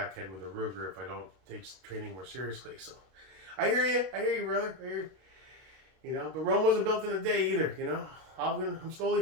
with a Ruger if I don't take training more seriously. So I hear you, brother. I hear you. You know, but Rome wasn't built in a day either. You know, I'm slowly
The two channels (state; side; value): late; left; 32 ms